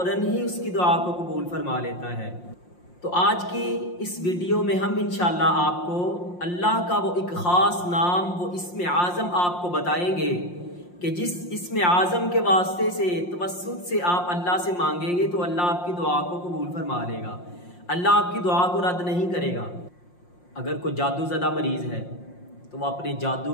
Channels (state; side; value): late; right; 5.7 ms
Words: ہی اس کی دعا کو قبول فرما لیتا ہے۔ تو آج کی اس ویڈیو میں ہم انشاءاللہ آپ کو اللہ کا وہ ایک خاص نام، وہ اسم اعظم آپ کو بتائیں گے کہ جس اسم اعظم کے واسطے سے، توسط سے آپ اللہ سے مانگیں گے تو اللہ آپ کی دعا کو قبول فرما لے گا، اللہ آپ کی دعا کو رد نہیں کرے گا۔ اگر کوئی جادو زدہ مریض ہے تو وہ اپنے جادو